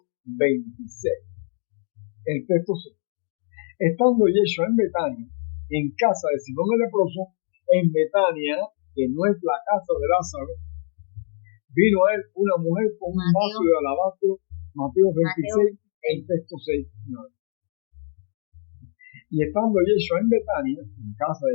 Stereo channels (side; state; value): right; silent; digital silence